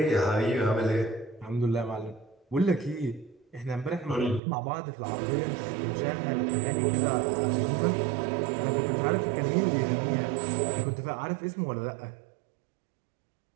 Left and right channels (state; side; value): drops out; left; at 4.4 s